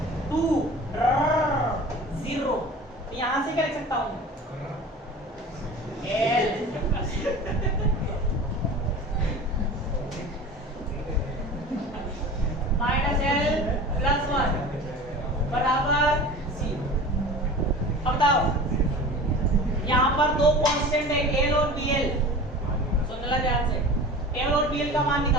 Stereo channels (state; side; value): normal; both; correlation 0.37